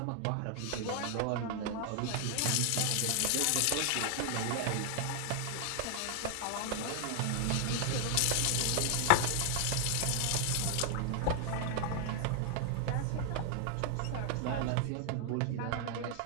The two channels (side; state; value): both; different; correlation 0.00